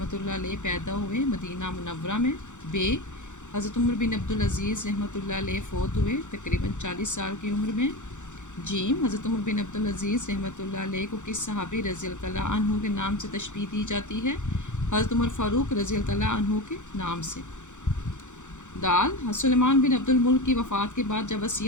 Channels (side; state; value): right; late; 0.85 ms